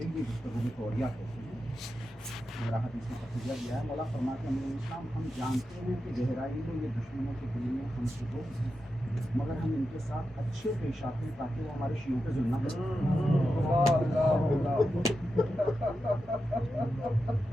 گفتگو میں توریہ کہتے ہیں. میرا حدیث میں تقیہ دیا ہے. مولا فرماتے ہیں امیر اسلام ہم جانتے ہیں کہ گہرائی میں یہ دشمنوں کے دل میں ہم سے دو مگر ہم ان کے ساتھ اچھے پیش آتے ہیں تاکہ وہ ہمارے شیعوں پہ ظلم نہ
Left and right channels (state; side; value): normal; both; correlation 0.89